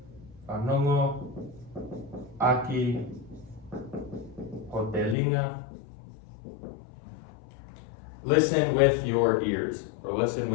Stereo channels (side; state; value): right; drops out; at 5.2 s